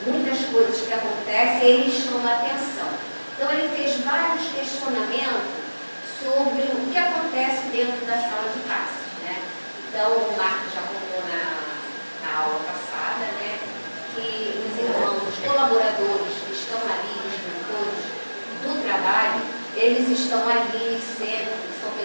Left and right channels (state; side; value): inverted; both; correlation -1.00